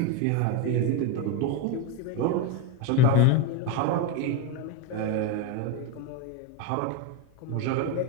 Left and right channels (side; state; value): both; different; correlation 0.03